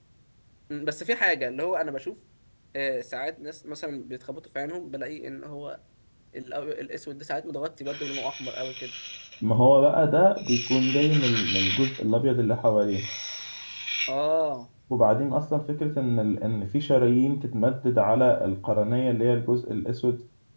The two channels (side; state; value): both; inverted; correlation -1.00